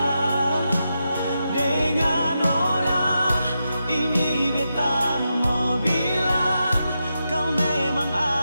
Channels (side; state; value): both; inverted; correlation -0.87